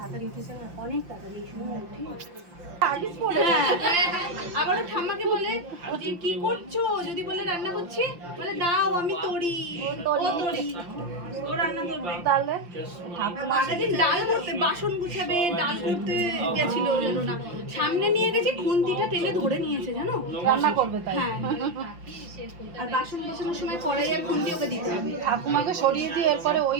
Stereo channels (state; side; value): late; left; 5.8 ms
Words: উঠেছে না, অনেক তাড়াতাড়ি আবারও ঠাম্মাকে বলে যে কি করছো, যদি বলে রান্না করছি, বলে দাও আমি তরি, ও তরি, ও রান্না করবে। তাহলে মাঝেদিন ডাল করতে, বাসন গুছাবে, ডাল করতে গেছিল, জানো না, সামনে নিয়ে গেছি, খুন্তিটা টেনে ধরে নিয়েছে, জানো, রান্না করবে তাই। হ্যাঁ, আর বাসন গোছানোর সময় কড়াই আর খুন্তি ওকে দিতে হবে। ঠাকুমাকে সরিয়ে দিয়ে এরপরে ওই